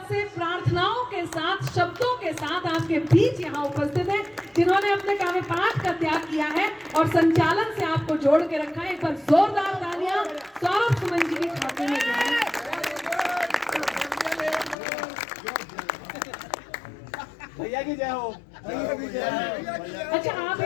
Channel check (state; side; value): drops out; right; at 14.8 s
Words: से प्रार्थनाओं के साथ, शब्दों के साथ आपके बीच यहाँ उपस्थित है, जिन्होंने अपने काव्य पाठ का त्याग किया है और संचालन से आपको जोड़ के रखा है। एक बार जोरदार तालियां सौरभ सुमन जी के खाते में जाए। भैया की जय हो। अच्छा, आप